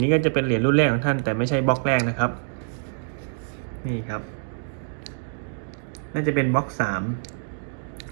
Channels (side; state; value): left; silent; digital silence